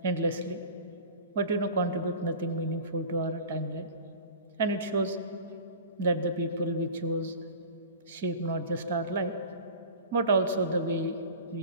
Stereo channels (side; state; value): both; inverted; correlation -0.38